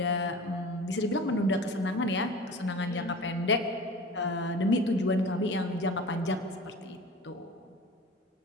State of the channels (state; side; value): normal; both; correlation 0.38